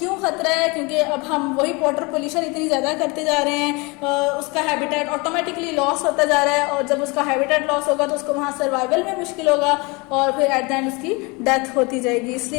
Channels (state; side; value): quieter; right; 27.5 dB